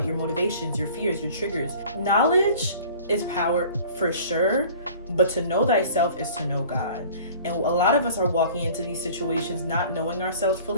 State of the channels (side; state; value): both; inverted; correlation -0.47